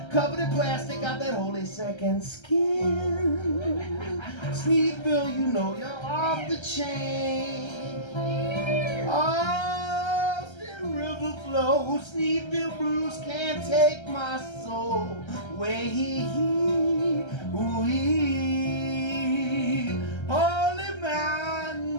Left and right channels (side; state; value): right; late; 1.3 ms